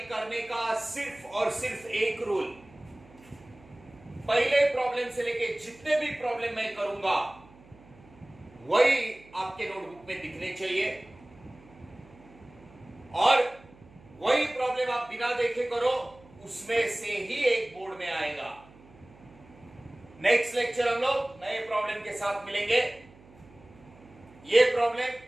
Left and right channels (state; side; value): noise; right; hum, 24 dB below the sound